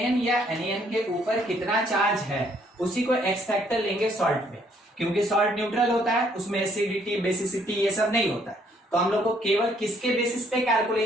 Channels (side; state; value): both; normal; correlation 0.66